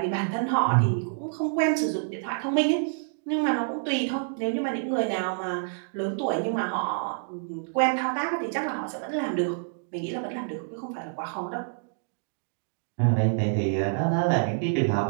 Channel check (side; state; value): left; silent; digital silence